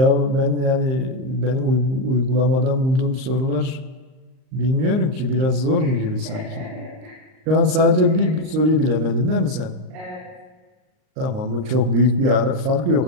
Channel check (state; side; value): late; left; 38 ms